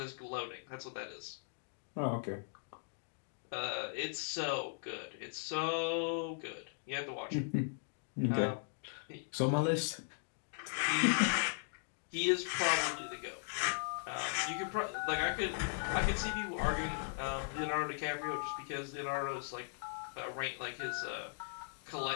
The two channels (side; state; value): right; silent; digital silence